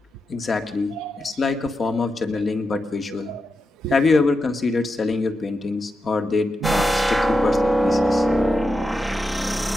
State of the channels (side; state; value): both; normal; correlation 0.88